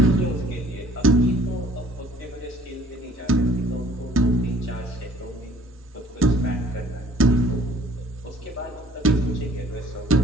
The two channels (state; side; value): normal; both; correlation 0.55